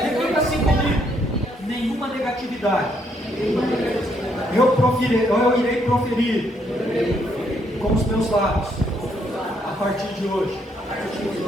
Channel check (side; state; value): both; normal; correlation 0.72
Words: assim comigo: nenhuma negatividade eu irei proferir com os meus lábios a partir de hoje,